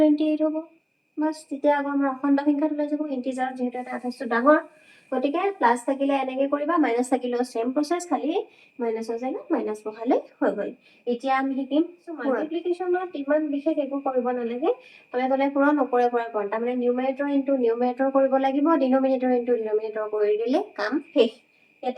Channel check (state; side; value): identical; both; correlation 1.00